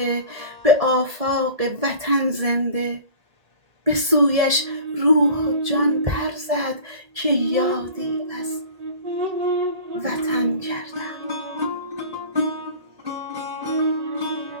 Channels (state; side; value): late; left; 1.7 ms